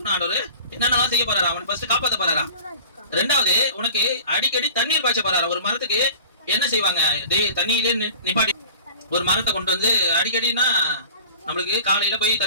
ஆண்டவர் என்னென்னலாம் செய்ய போறாரா. அவன் ஃபர்ஸ்ட் காப்பாத்த போறாரா. ரெண்டாவது, உனக்கு அடிக்கடி தண்ணீர் பாய்ச்ச போறாரா. ஒரு மரத்துக்கு என்ன செய்வாங்க, தண்ணியிலே நிப்பாட்டி ஒரு மரத்தை கொண்டு வந்து அடிக்கடினா, நம்மளுக்கு காலையில போய்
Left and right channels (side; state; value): both; inverted; correlation -0.41